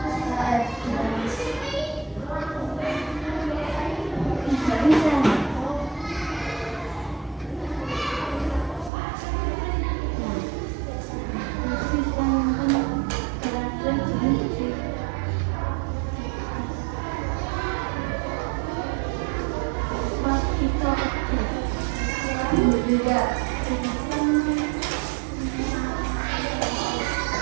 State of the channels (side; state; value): left; drops out; at 8.9 s